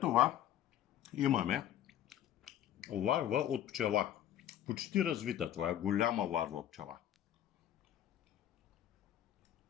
имаме ларва от пчела. Почти развита, това е голяма ларва от пчела.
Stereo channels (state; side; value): quieter; right; 11.5 dB